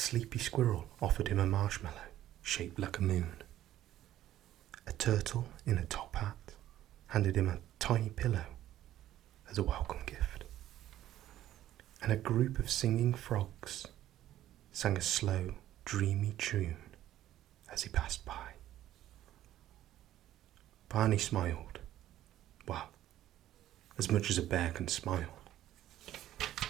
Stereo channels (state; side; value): quieter; left; 13.1 dB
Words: squirrel offered him a marshmallow shaped like a moon. A turtle in a top hat handed him a tiny pillow as a welcome gift. And a group of singing frogs sang a slow, dreamy tune as he passed by. Barney smiled. Well, as much as a bear can smile.